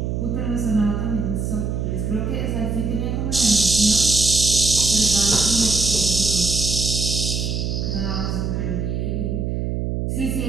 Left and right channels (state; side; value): noise; right; hum, 1 dB below the sound